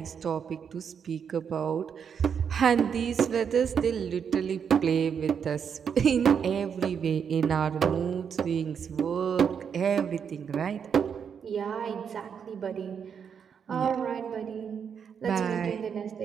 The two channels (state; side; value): quieter; left; 7.2 dB